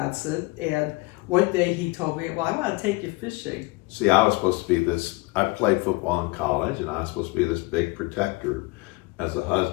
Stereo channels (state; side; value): quieter; right; 24.8 dB